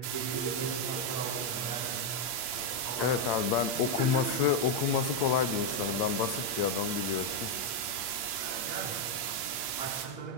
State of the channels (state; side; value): late; right; 8.6 ms